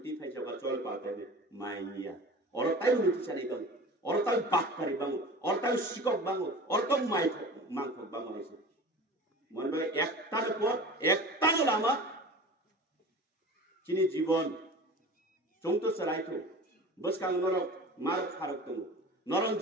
ফাইজাবা চল পাতে মাইনিয়া অরতাই উনিতি চালি বাং অরতাই বাক্কারি বাং অরতাই শিকক বাং অরতম মাইক মাংক বাং হইছে মনে ভাই একটার পর একটা লামা চিনি জীবন চংতো সরাইতো বসকাং নরক মার ফারক দङ নরম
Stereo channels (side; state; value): both; normal; correlation 0.38